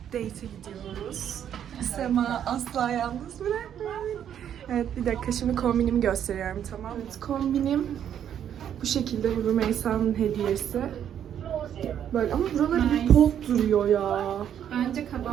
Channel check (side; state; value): left; quieter; 9.5 dB